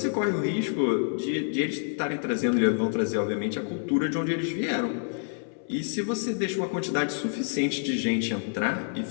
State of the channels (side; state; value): right; silent; 60 dB below the other